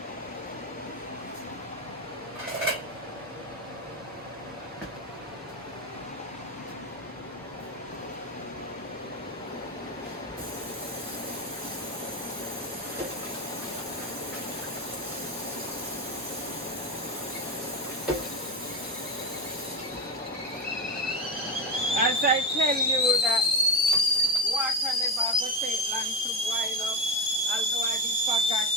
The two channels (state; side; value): normal; both; correlation 0.16